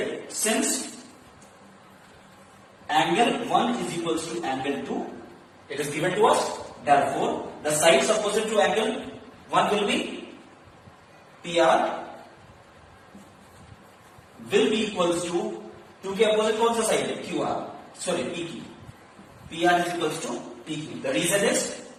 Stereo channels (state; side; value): identical; both; correlation 1.00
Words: Since angle 1 is equals to angle 2, it is given to us. Therefore, the sides opposite to angle 1 will be PR will be equals to 2 के opposite कौन सा side है? QR. Sorry, PQ. PR is equals to PQ. The reason is